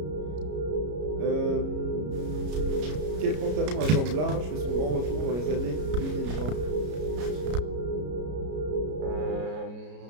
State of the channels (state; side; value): late; left; 33 ms